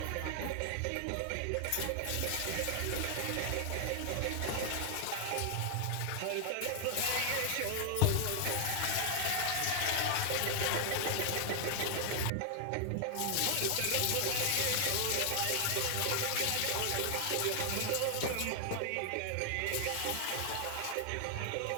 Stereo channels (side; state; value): both; different; correlation 0.00